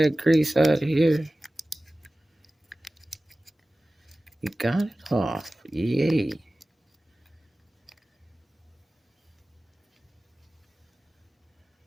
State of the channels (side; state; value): both; normal; correlation 0.96